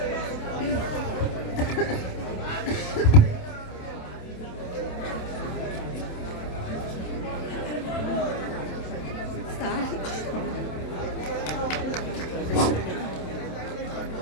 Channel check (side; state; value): right; late; 27 ms